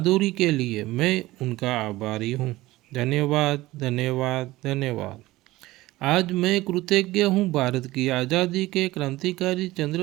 के लिए मैं उनका आभारी हूँ। धन्यवाद, धन्यवाद, धन्यवाद। आज मैं कृतज्ञ हूँ भारत की आज़ादी के क्रांतिकारी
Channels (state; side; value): quieter; left; 18.1 dB